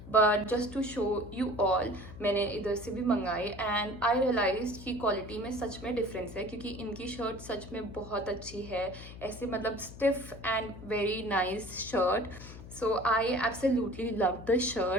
But just to show you all मैंने इधर से भी मंगाई एंड आई रियलाइज कि क्वालिटी में सच में डिफरेंस है क्योंकि इनकी शर्ट सच में बहुत अच्छी है. ऐसे मतलब stiff and very nice shirt. So I absolutely loved the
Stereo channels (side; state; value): left; noise; hum, 14 dB below the sound